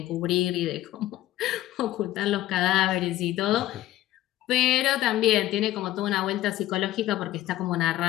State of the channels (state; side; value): quieter; right; 14.6 dB